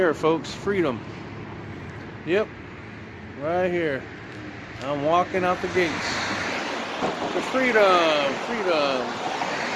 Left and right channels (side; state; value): both; identical; correlation 1.00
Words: folks. Freedom. Yep, right here. I'm walking out the gates to freedom.